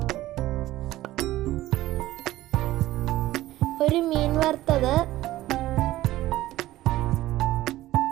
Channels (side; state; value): left; quieter; 15.7 dB